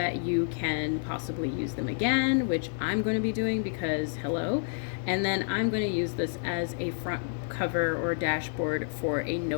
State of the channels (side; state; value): right; silent; digital silence